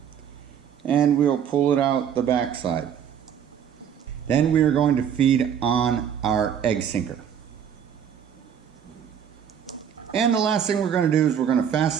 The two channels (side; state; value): left; quieter; 8.5 dB